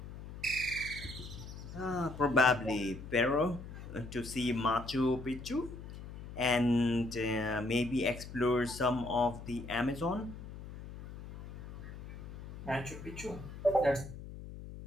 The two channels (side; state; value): left; noise; hum, 12 dB below the sound